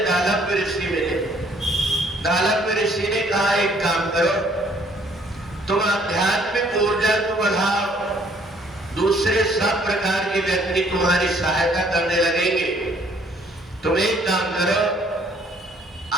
दालव्य ऋषि मिले। दालव्य ऋषि ने कहा, एक काम करो, तुम आध्यात्मिक ऊर्जा को बढ़ाओ, दूसरे सब प्रकार के व्यक्ति तुम्हारी सहायता करने लगेंगे। तुम एक काम करो,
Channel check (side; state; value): both; normal; correlation 0.62